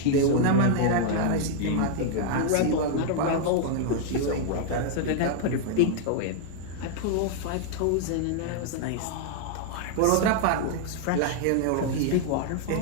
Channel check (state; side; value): different; both; correlation 0.00